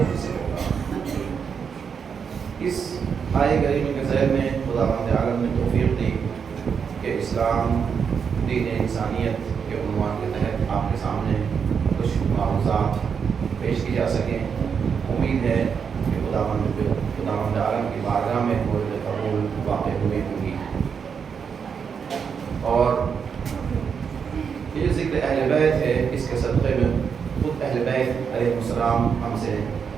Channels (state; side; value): quieter; left; 6.6 dB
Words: میں سے ہوگا. اس آئے کریمہ کے ذیل میں خداوند عالم نے توفیق دی کہ اسلام دین انسانیت کے عنوان کے تحت آپ کے سامنے کچھ معروضات پیش کی جا سکیں۔ امید ہے کہ خداوند عالم کی بارگاہ میں مورد قبول واقع ہوئے ہوں گی۔ اور یہ ذکر اہل بیت ہے، اس کے صدقے میں خود اہل بیت علیہ السلام ہم سے